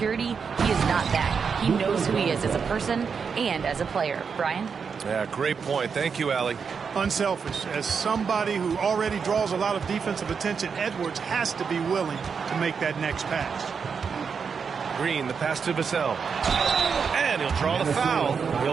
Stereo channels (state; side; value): quieter; left; 6.0 dB